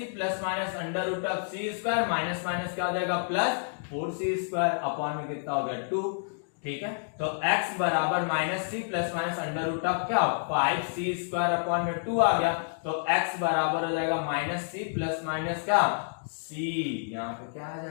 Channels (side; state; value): right; silent; digital silence